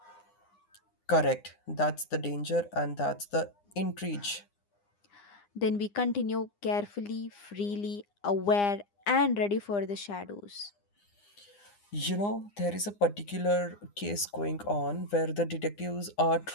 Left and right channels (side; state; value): right; late; 9.8 ms